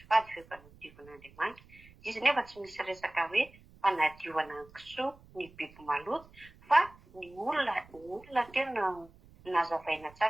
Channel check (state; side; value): noise; right; rumble, 24 dB below the sound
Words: fady fa efa nadiovan'Andriamanitra. Izy nefa tsy misy resaka hoe fanadiovana ny kisoa ny biby maloto fa ny olona tena nazavaina